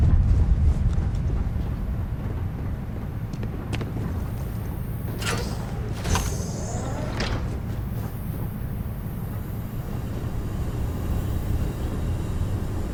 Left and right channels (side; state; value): both; identical; correlation 1.00